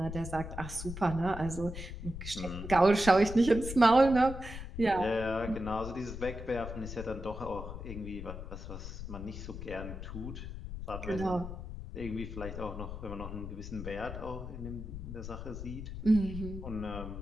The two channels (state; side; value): noise; left; rumble, 8 dB below the sound